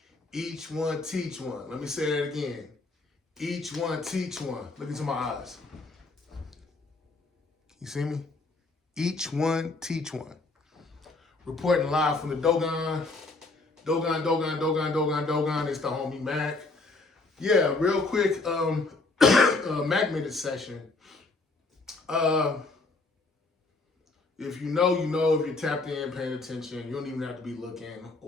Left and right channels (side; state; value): right; quieter; 3.4 dB